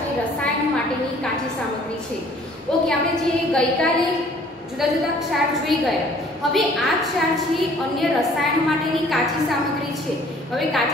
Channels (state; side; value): normal; both; correlation 0.55